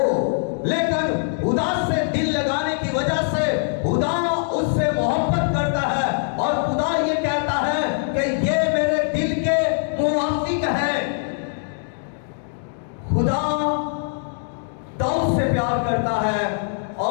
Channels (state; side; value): silent; right; digital silence